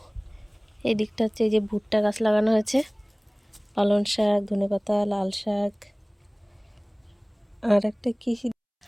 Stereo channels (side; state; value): both; identical; correlation 1.00